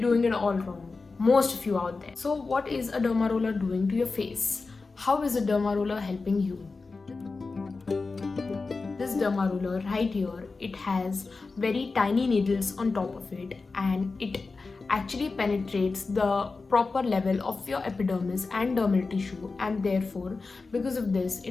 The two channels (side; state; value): right; quieter; 4.0 dB